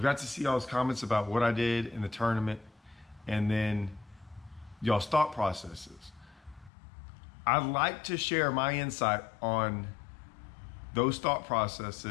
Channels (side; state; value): right; drops out; at 6.7 s